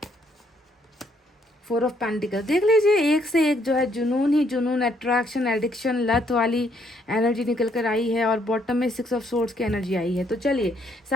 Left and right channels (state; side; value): normal; both; correlation 0.70